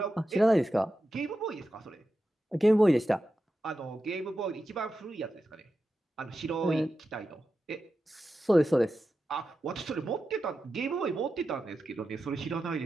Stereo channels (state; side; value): normal; both; correlation 0.91